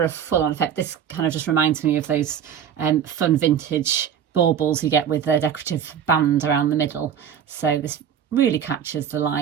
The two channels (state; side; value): quieter; left; 8.4 dB